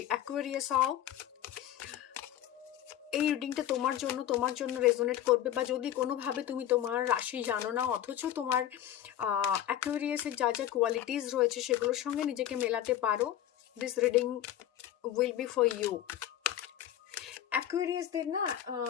অ্যাকুয়ারিয়াস হও, এই রিডিংটা তোমার জন্য রেজোনেট করবে। বা যদি কোনোভাবে তুমি তোমার রাশি জানো না, অথচ তোমার অ্যাকুয়ারিয়াসের যা যা কোয়ালিটিস রয়েছে সেগুলোর সঙ্গে নিজেকে মেলাতে পারো, this reading will be for you. Aquarius দের না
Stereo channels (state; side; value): quieter; right; 11.6 dB